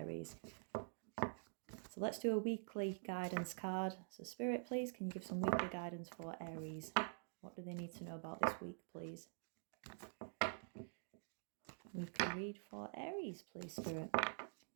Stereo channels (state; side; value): silent; left; digital silence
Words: So let's do a weekly guidance card. So Spirit, please, can you give some weekly guidance for Aries? What do they need to know about this week, please? Weekly read for Aries, please, Spirit.